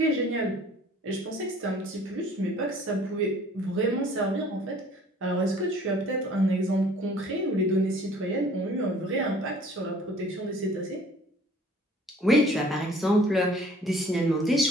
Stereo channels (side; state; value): both; normal; correlation 0.52